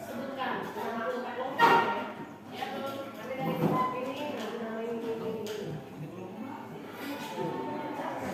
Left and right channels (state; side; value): identical; both; correlation 1.00